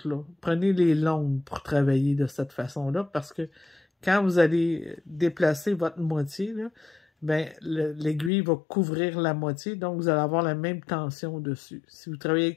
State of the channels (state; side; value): drops out; right; at 8.3 s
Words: là. Prenez les longues pour travailler de cette façon-là, parce que quand vous allez déplacer votre moitié, là, ben, l'aiguille va couvrir la moitié, donc vous allez avoir la même tension dessus. Si vous travaillez